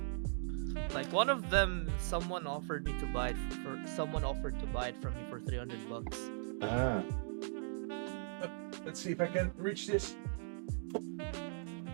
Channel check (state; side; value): silent; left; digital silence